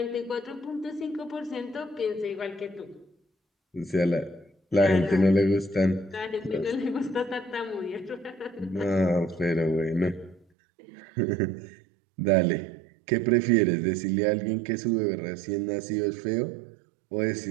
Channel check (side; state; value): left; drops out; at 10.5 s